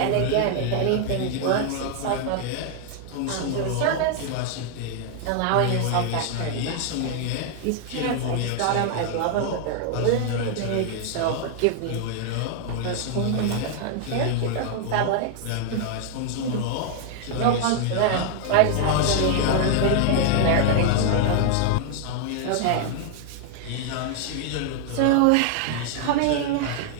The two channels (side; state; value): both; different; correlation 0.00